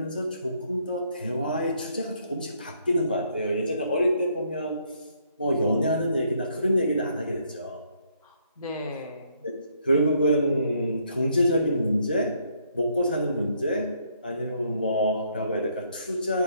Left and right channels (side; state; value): both; inverted; correlation -0.70